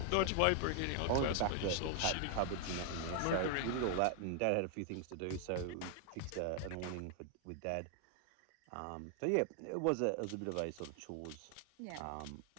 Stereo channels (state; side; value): different; both; correlation 0.00